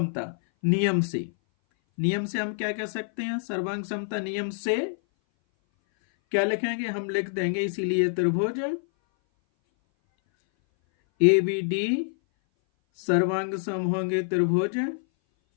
नियम से हम क्या कह सकते हैं? सर्वांग समता नियम से क्या लिखेंगे? हम लिख देंगे, इसीलिए त्रिभुज ABD सर्वांग सम होंगे त्रिभुज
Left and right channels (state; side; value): silent; right; 58 dB below the other